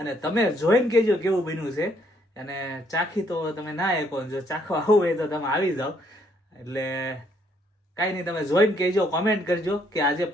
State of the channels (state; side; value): normal; both; correlation 0.69